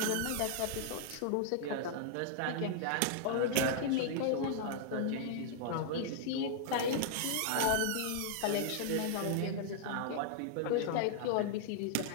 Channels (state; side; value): different; both; correlation 0.00